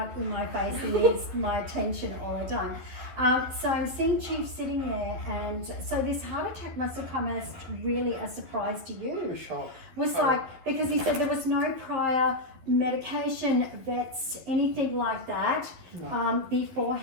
in my face and needs my attention all the time. So I'm seeing Chief sitting there, and so this heart attack must have come as really a surprise to you. A shock. Was like, because he said there was no prior medication, vets, anything like that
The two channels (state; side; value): late; left; 12 ms